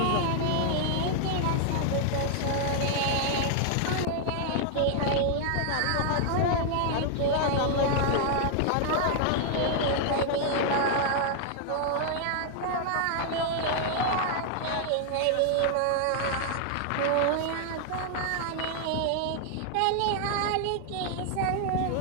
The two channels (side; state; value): both; different; correlation 0.00